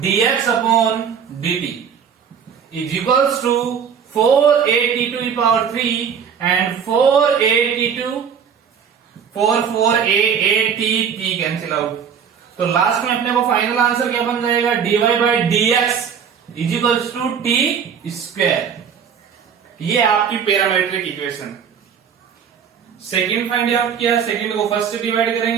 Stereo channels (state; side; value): quieter; left; 7.4 dB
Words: dx upon dt is equals to 4at to the power 3 and 4at to 4 t cancel out. तो last में अपने को final answer क्या बन जाएगा, dy by dx is equals to T square. ये आपकी parametric equation. Second find out किया, सेकंड को फर्स्ट से डिवाइड